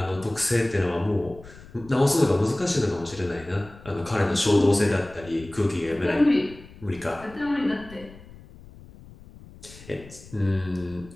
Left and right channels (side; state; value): left; noise; rumble, 20 dB below the sound